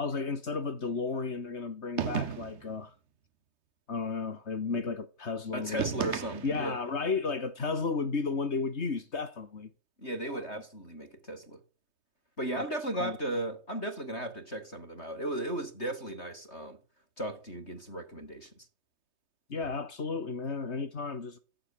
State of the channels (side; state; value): right; late; 3.2 ms